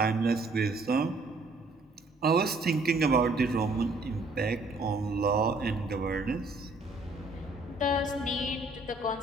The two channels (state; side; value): quieter; left; 3.0 dB